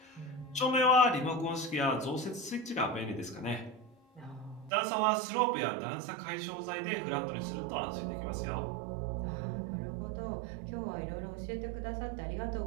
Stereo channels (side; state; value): left; drops out; at 4.7 s